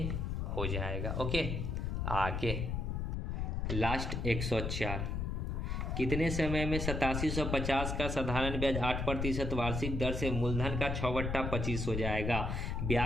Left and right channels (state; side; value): noise; left; rumble, 1 dB below the sound